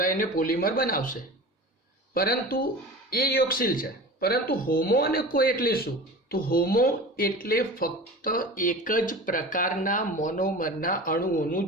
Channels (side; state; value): both; normal; correlation 0.34